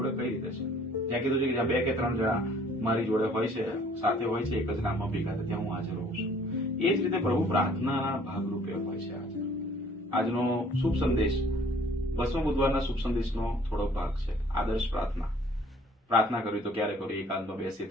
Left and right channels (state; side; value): normal; both; correlation 0.56